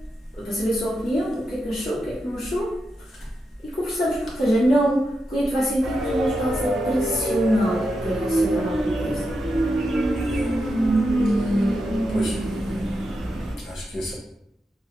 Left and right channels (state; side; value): normal; both; correlation 0.86